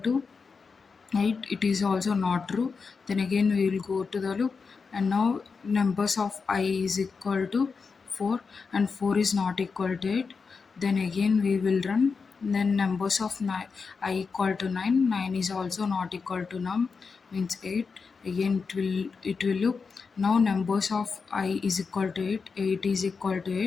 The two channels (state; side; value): quieter; right; 5.1 dB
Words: 8, it is also not true, then again we will go to the loop, and now numbers of I is equal to 4, and 4 is not equal to 8, then again we will run, then numbers of I equal to 9, 9 is also not equal to num, means 8, again it will loop. Now numbers of I is equal to 8, 8 is equal to